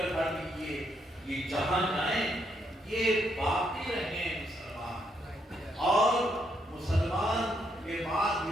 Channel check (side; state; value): both; normal; correlation 0.76